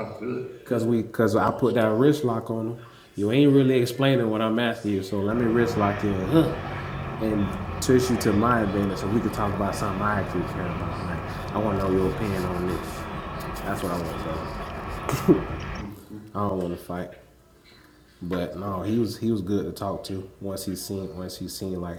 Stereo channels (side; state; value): both; identical; correlation 1.00